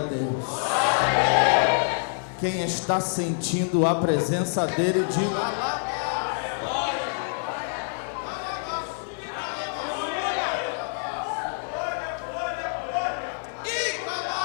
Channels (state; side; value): silent; right; digital silence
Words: Deus. Quem está sentindo a presença dele, diga alaba.